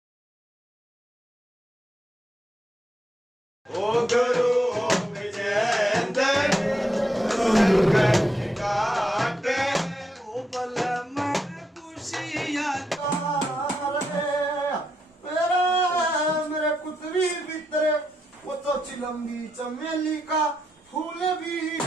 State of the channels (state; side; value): normal; both; correlation 0.82